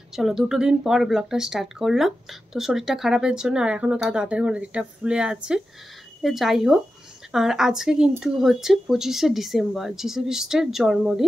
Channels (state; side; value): normal; both; correlation 0.91